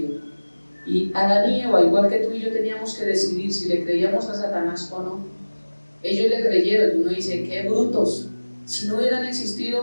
Y Adán y Eva, igual que tú y yo, teníamos que decidir si le creíamos a Satanás o no. Ellos le creyeron, y uno dice, qué brutos. Si no hubieran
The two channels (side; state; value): both; inverted; correlation -1.00